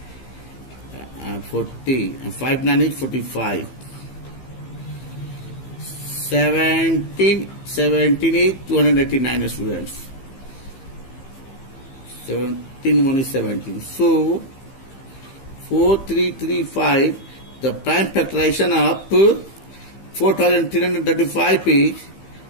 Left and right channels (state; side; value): late; right; 15 ms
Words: 40 and 5 9 is 45. 17 is 289, students. 17 1 is 17. So 4335, the prime factorization of 4335 is